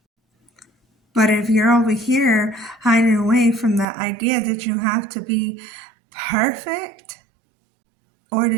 But if you're over here hiding away from the idea that you have to be perfect, or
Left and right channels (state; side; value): drops out; left; at 3.9 s